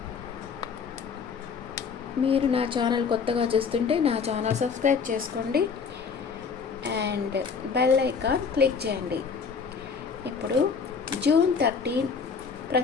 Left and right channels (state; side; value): quieter; right; 5.7 dB